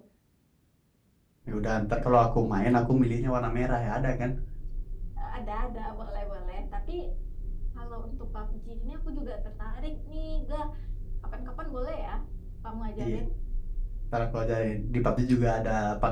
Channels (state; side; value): identical; both; correlation 1.00